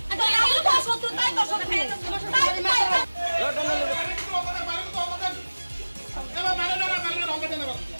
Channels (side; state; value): both; inverted; correlation -1.00